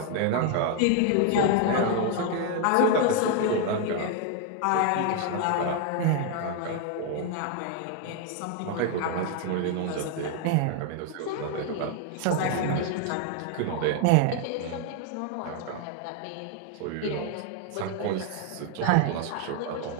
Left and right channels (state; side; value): different; both; correlation 0.00